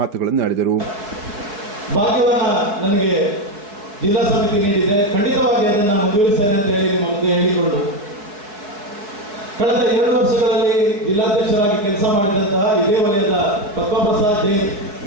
ಮಾತುಗಳನ್ನು ಆಡಿದರು. ಭಾಗ್ಯವನ್ನ ನನಗೆ ಜಿಲ್ಲಾ ಸಮಿತಿ ನೀಡಿದೆ, ಖಂಡಿತವಾಗಿ ಅದನ್ನು ಮುಂದುವರಿಸ್ತೇನೆ ಅಂತ ಹೇಳಿ ನಿಮ್ಮ ಮುಂದೆ ಹೇಳಿಕೊಂಡು ಕಳೆದ 2 ವರ್ಷಗಳಲ್ಲಿ ಜಿಲ್ಲಾಧ್ಯಕ್ಷರಾಗಿ ಕೆಲಸ ಮಾಡಿದಂತಹ ಇದೇ ವಲಯದ ಪದ್ಮಪ್ರಸಾದ್ ಜೈನ್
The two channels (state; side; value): late; left; 4.7 ms